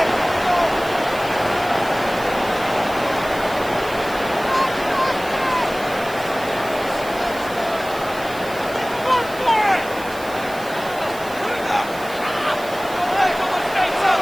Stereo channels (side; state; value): right; noise; hiss, 17 dB below the sound